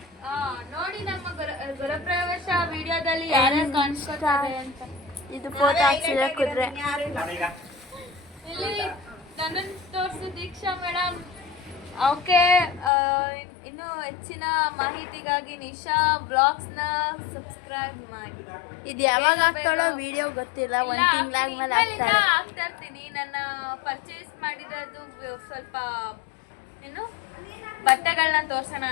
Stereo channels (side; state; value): right; drops out; at 12.9 s